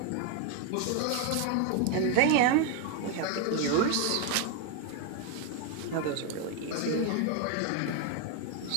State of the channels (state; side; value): different; both; correlation 0.01